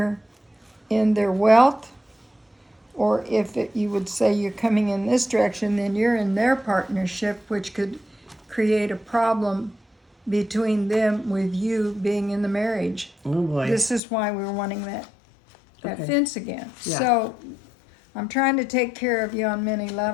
in their wealth, or if you would say you're coming in this direction, then you're in their partnership, which could create a problem between them with you being in the marriage. Oh, boy. This is why we're wanting that Okay. fence again. Yeah. So I'm trying to take care of you on many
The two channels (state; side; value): drops out; right; at 14.0 s